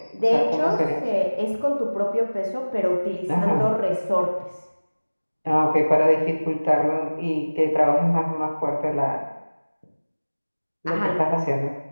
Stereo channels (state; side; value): inverted; both; correlation -1.00